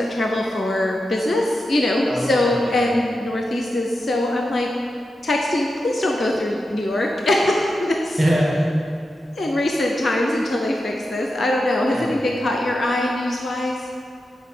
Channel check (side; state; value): both; normal; correlation 0.89